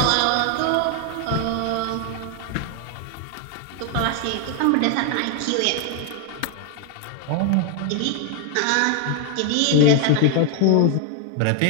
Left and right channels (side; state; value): both; different; correlation 0.00